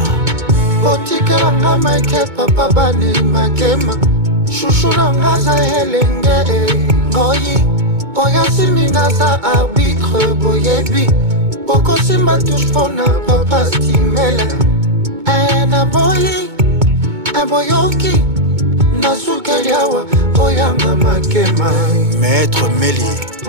Botikelanga Make, papa bani Makema. Chouchoulanga za helenge, Ngoi. Oyasimina za arbitre, boyebi. Poko simba touche pona papa stimele. Un boyoki. Nasukeliawa oyanga Makema. Maître Meli,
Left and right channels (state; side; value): late; left; 2.2 ms